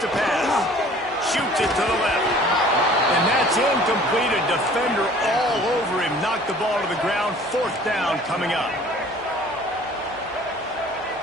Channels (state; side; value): normal; both; correlation 0.50